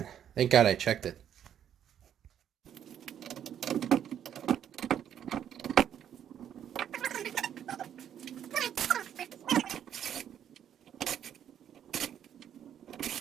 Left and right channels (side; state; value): left; quieter; 9.7 dB